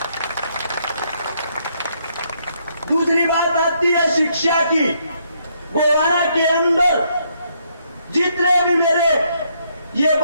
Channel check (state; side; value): inverted; both; correlation -0.73